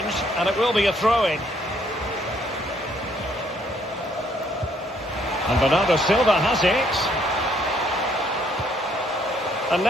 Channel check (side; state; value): both; normal; correlation 0.68